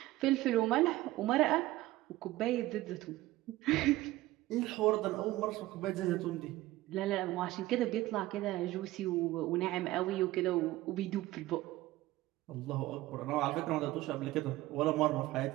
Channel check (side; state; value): left; quieter; 17.1 dB